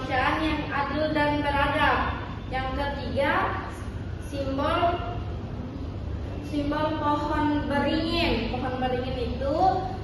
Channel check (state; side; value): identical; both; correlation 1.00